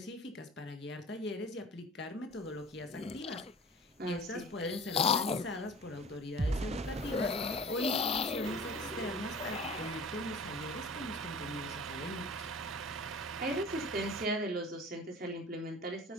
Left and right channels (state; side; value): normal; both; correlation 0.41